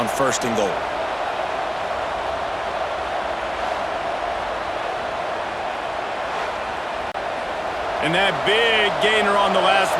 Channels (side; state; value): both; identical; correlation 1.00